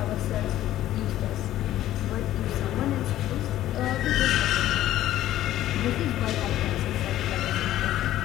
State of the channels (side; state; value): right; quieter; 13.5 dB